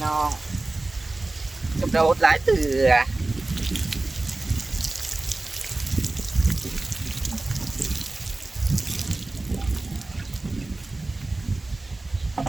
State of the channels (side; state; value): left; quieter; 3.0 dB